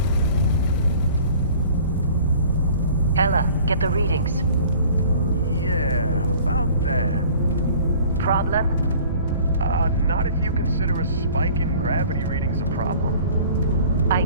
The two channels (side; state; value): both; inverted; correlation -0.49